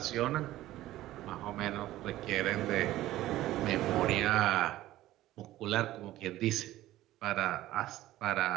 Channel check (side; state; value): left; quieter; 15.3 dB